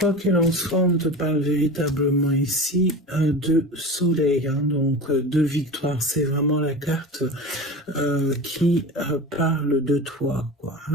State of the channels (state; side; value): normal; both; correlation 0.31